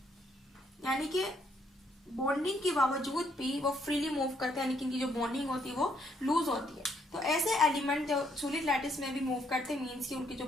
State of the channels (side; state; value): both; normal; correlation 0.71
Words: यानी कि बॉन्डिंग के बावजूद भी वो फ्रीली मूव करते हैं, यानी कि इनकी जो बॉन्डिंग होती है वो लूज होती है। तो ऐसे एलिमेंट जो सॉलिड लैटिस में भी मूव करते हैं, मीन्स कि उनकी जो